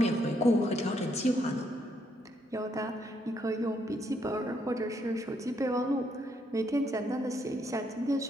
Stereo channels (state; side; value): normal; both; correlation 0.74